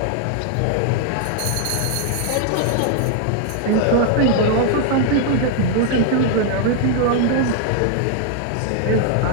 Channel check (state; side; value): different; both; correlation 0.00